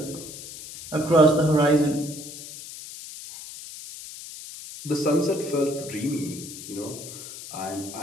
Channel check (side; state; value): left; noise; hiss, 12 dB below the sound